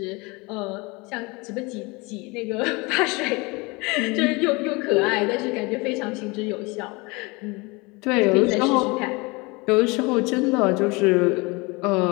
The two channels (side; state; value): right; quieter; 26.1 dB